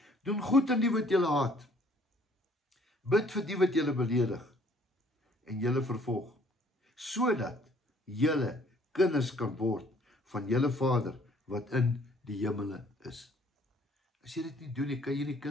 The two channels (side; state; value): both; normal; correlation 0.60